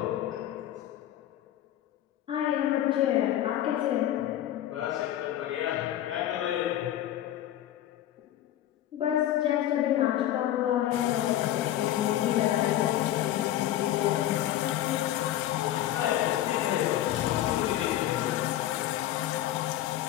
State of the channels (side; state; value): right; quieter; 12.8 dB